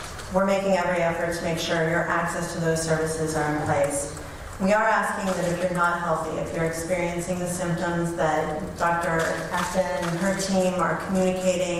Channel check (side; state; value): both; identical; correlation 1.00